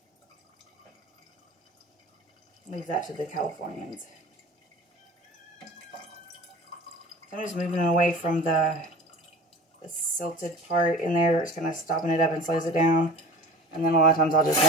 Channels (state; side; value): normal; both; correlation 0.39